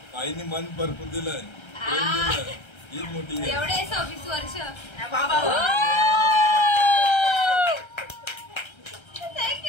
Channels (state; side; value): late; right; 1.3 ms